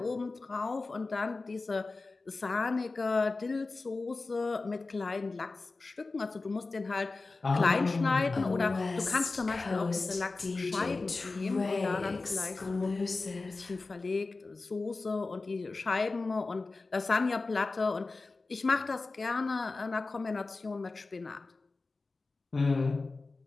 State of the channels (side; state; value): right; quieter; 3.6 dB